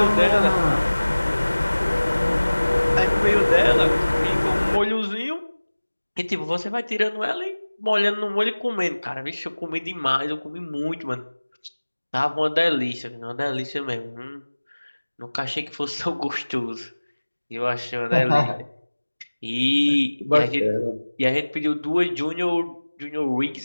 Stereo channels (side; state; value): both; inverted; correlation -1.00